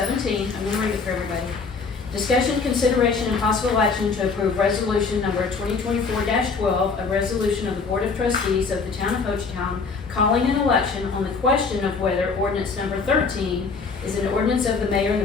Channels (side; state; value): right; quieter; 4.8 dB